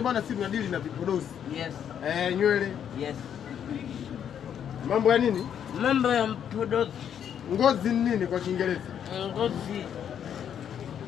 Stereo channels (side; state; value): right; quieter; 8.9 dB